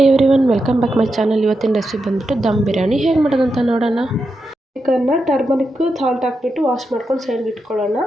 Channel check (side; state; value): both; normal; correlation 0.87